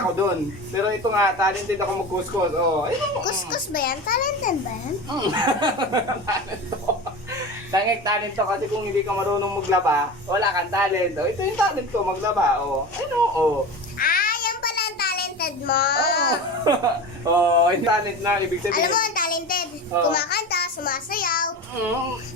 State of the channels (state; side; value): normal; both; correlation 0.29